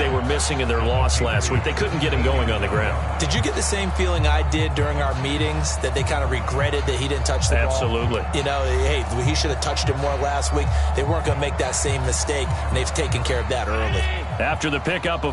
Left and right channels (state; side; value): identical; both; correlation 1.00